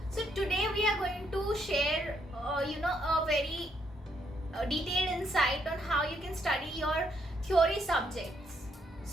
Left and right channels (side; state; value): both; normal; correlation 0.74